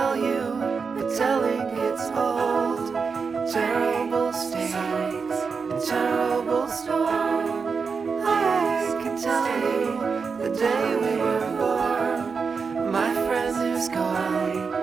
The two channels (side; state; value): left; quieter; 5.3 dB